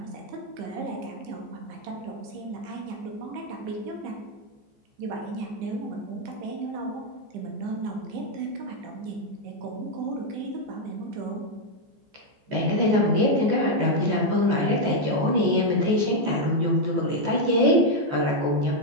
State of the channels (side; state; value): left; late; 14 ms